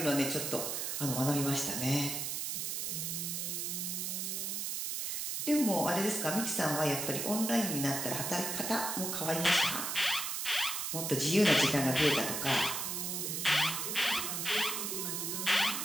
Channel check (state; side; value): noise; right; hiss, 2 dB below the sound